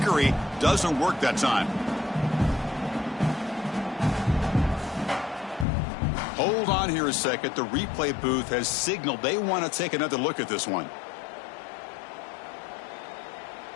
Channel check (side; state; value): right; drops out; at 5.7 s